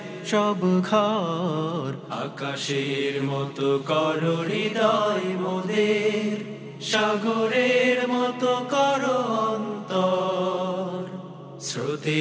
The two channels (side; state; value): both; identical; correlation 1.00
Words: সব ঘর, আকাশের মতো করো হৃদয় মোদের, সাগরের মতো করো অন্তর।